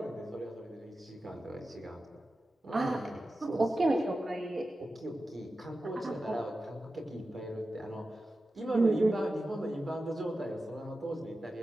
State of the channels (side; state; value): both; normal; correlation 0.93